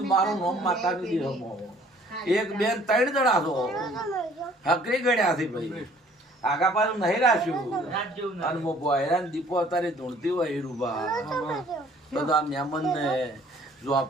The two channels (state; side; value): normal; both; correlation 0.57